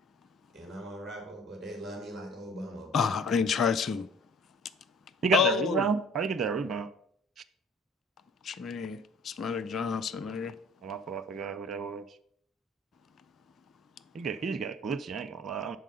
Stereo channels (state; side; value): normal; both; correlation 0.50